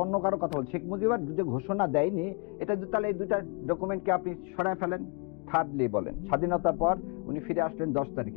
অন্য কারো কথা বলছি। শেখ মুজিবার যে ঘোষণা দেয়নি, এটা তাহলে এই দুইটা ডকুমেন্টকে আপনি সরায় ফেলেন। থার্ডলি বলেন, স্বাধীনতার পর উনি ফিরে আসলেন 10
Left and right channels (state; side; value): quieter; right; 32.7 dB